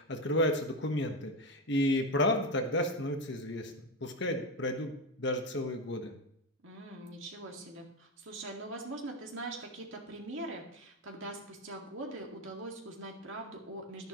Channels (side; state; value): both; normal; correlation 0.14